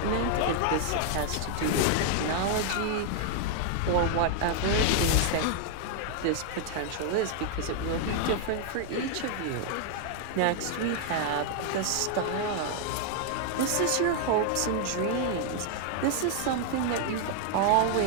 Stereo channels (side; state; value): both; different; correlation 0.00